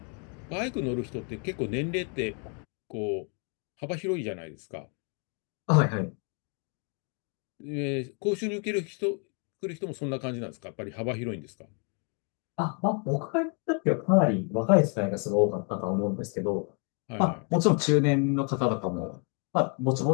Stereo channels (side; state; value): right; quieter; 38.7 dB